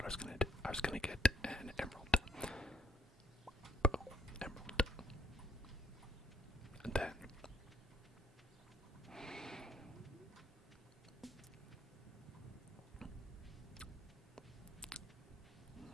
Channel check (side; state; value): both; normal; correlation 0.65